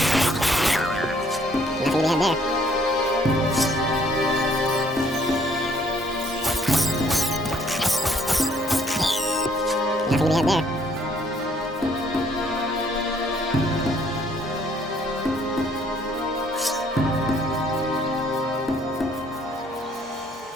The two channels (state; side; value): normal; both; correlation 0.63